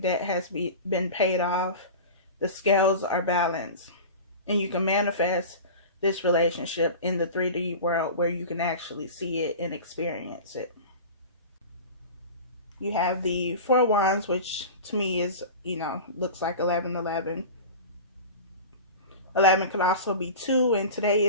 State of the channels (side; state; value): both; inverted; correlation -0.33